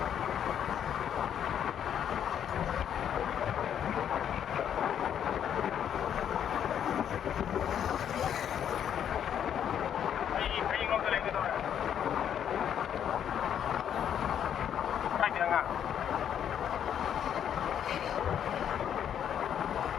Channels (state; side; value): quieter; right; 9.2 dB